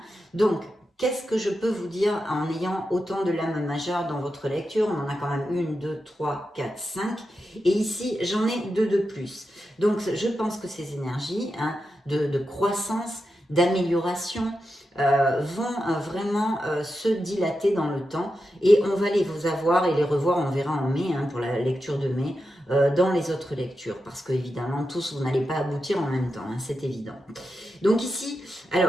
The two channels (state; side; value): normal; both; correlation 0.89